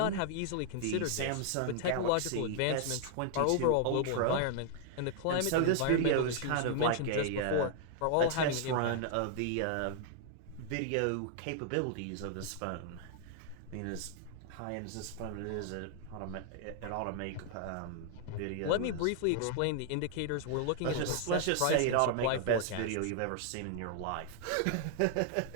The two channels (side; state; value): both; different; correlation 0.00